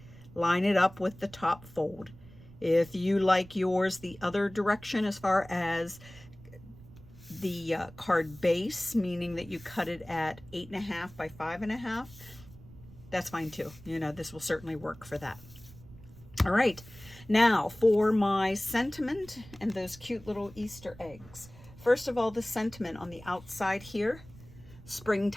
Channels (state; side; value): noise; right; rumble, 20 dB below the sound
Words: line it up with the top fold. If you like yours the other direction as far as the card base, meaning that you cut it at 8.5 by 5.5, that's fine too. This will certainly work for that. All right, now for my sentiment and those cute little Easter eggs. First of all, the sentiment on the outside here,